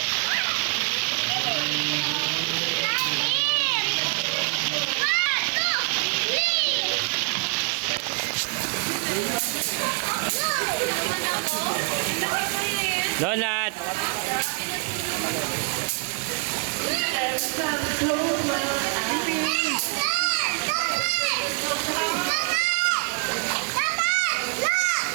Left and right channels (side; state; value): left; quieter; 39.4 dB